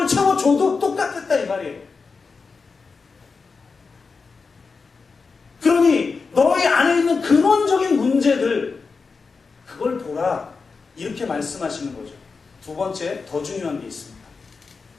채워줘도 똑같았다 이 말이에요. 그러니 너희 안에 있는 근원적인 문제들 그걸 보라 이렇게 말씀하시는 거죠. 두 번째 더 중요한 게 있습니다.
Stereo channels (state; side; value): quieter; right; 4.7 dB